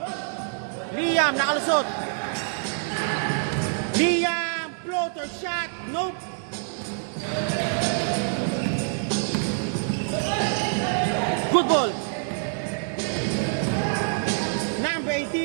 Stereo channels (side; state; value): left; silent; digital silence